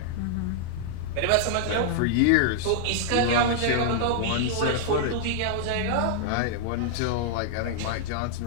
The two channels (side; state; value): both; different; correlation -0.01